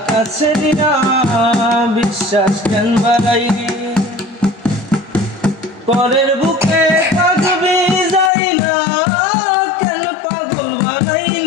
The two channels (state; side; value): drops out; right; at 8.3 s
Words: কাছে নিয়া বিশ্বাস কেন বাড়াইলি পরের বুকে থাকবি যাই না কেন পাগল